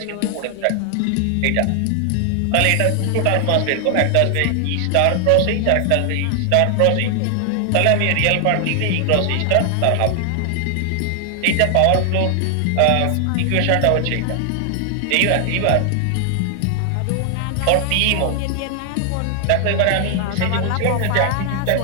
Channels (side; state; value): both; different; correlation 0.00